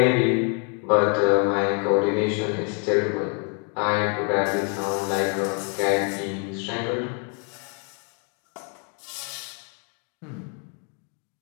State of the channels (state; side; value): quieter; right; 38.5 dB